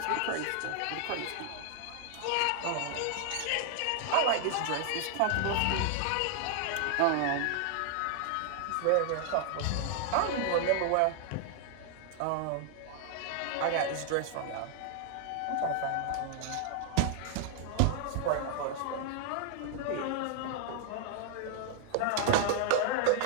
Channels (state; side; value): different; both; correlation 0.00